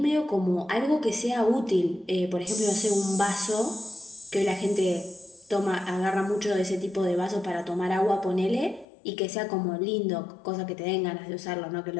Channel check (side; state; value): right; drops out; at 8.8 s